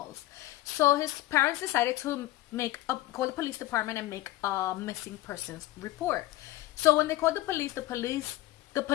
So his parents decided to call the police department and make a missing persons report. So when they called the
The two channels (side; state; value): right; quieter; 16.4 dB